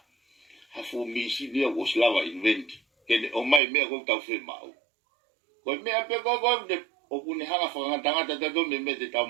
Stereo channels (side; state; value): left; drops out; at 3.6 s